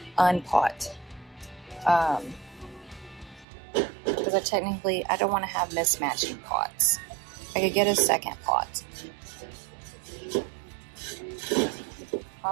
unpot. Because I don't want to have mismatching pots. I could get a second pot.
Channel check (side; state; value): left; drops out; at 3.5 s